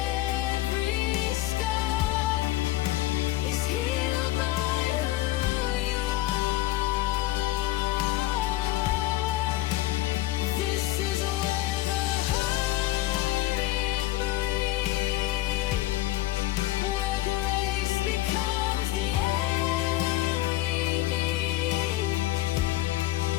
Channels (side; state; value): right; quieter; 15.6 dB